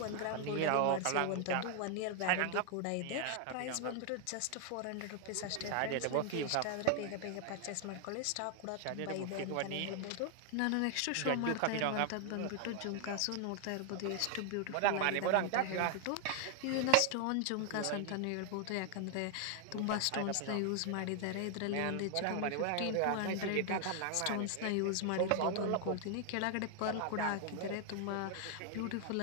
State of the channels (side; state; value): both; different; correlation 0.00